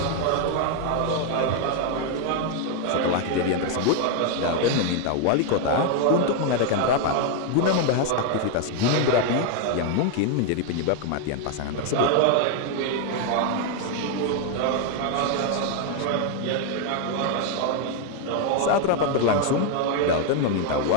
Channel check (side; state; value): both; different; correlation 0.01